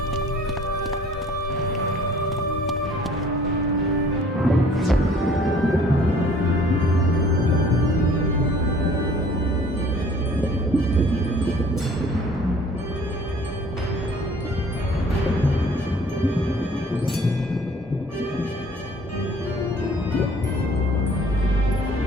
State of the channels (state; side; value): normal; both; correlation 0.53